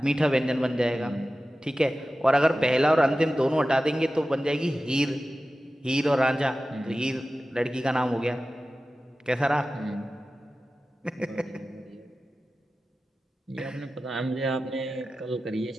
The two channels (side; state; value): both; normal; correlation 0.95